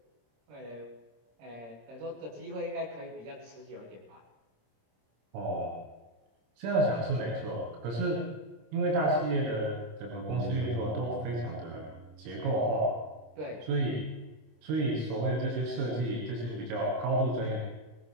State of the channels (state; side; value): late; left; 26 ms